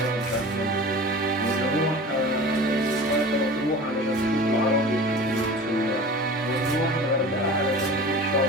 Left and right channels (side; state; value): both; normal; correlation 0.37